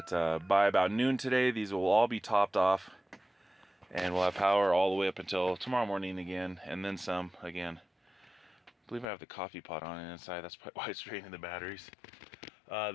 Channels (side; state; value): right; drops out; at 9.1 s